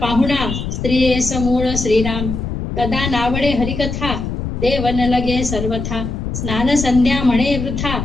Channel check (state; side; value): noise; left; rumble, 4 dB below the sound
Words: स्त्रिये समूळ श्रीराम. कदा नावडे हरिकथा देवन लगे सर्वथा. स्नान संध्या म्हणे वृथा